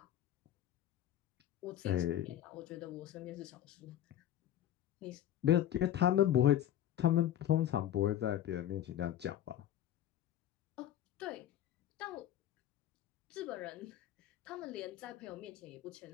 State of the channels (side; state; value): right; quieter; 11.6 dB